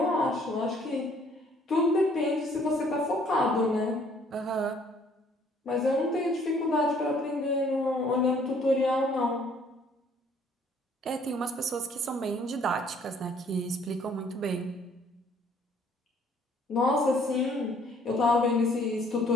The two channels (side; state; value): both; normal; correlation 0.61